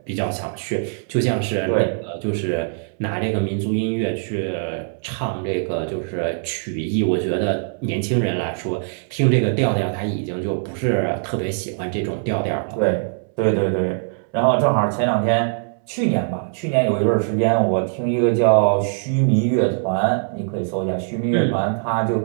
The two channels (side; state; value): left; silent; 65 dB below the other